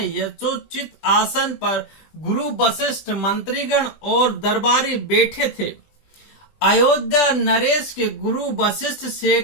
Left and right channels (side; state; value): right; late; 20 ms